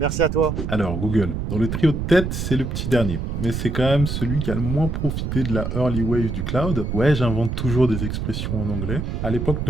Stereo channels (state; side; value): noise; right; rumble, 3 dB below the sound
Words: à toi. Alors, Google, dans le trio de tête, c'est le petit dernier. Mais c'est quand même celui qui a le moins profité de la early wave du cloud. Ouais, j'invente toujours des expressions en anglais. À l'époque